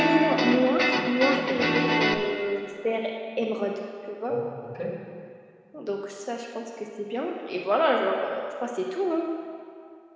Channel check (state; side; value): identical; both; correlation 1.00